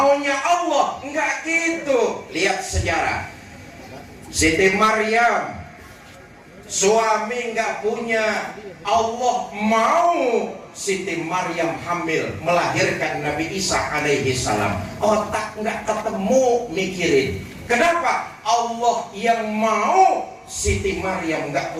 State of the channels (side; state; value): both; identical; correlation 1.00